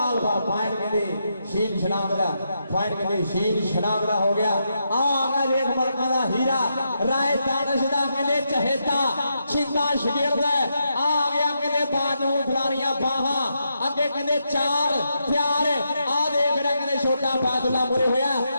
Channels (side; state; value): both; inverted; correlation -0.82